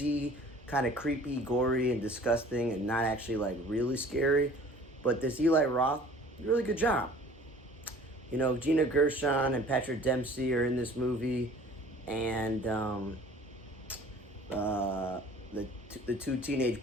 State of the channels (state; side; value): normal; both; correlation 0.49